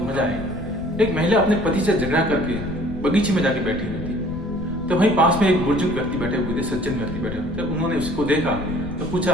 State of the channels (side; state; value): left; noise; rumble, 11 dB below the sound